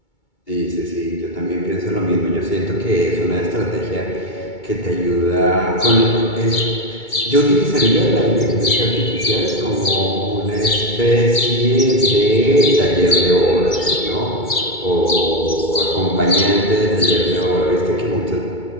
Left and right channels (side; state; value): right; late; 2.2 ms